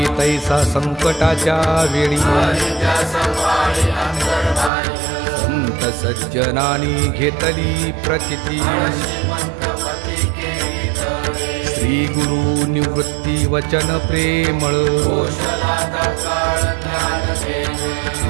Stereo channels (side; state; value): left; drops out; at 4.7 s